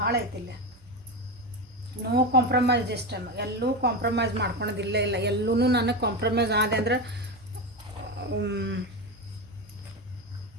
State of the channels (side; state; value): right; noise; hum, 29 dB below the sound